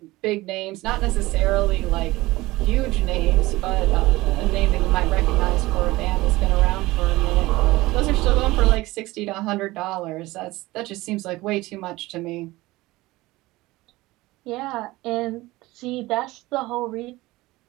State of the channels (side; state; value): left; quieter; 19.5 dB